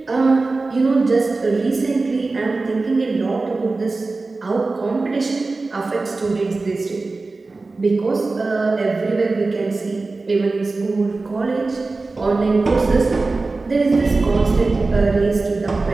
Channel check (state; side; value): quieter; left; 3.6 dB